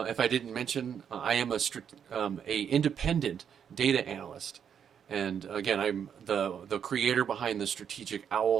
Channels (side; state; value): left; quieter; 8.0 dB